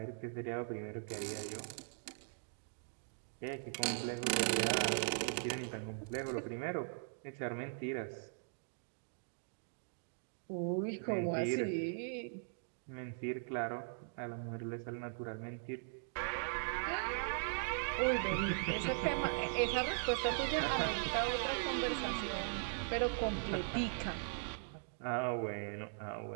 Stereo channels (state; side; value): silent; left; digital silence